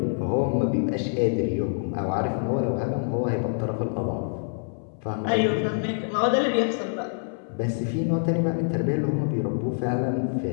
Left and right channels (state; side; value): silent; right; 59 dB below the other